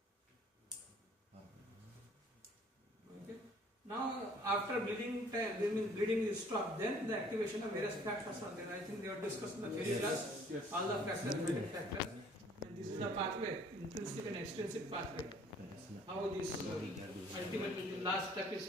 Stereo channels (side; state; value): both; normal; correlation 0.56